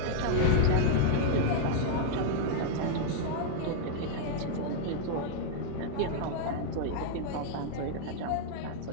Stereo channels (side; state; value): both; different; correlation -0.01